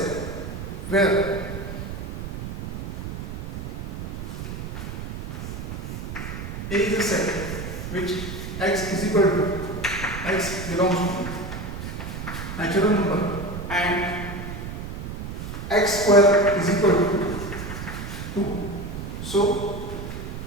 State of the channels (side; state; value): right; noise; rumble, 7 dB below the sound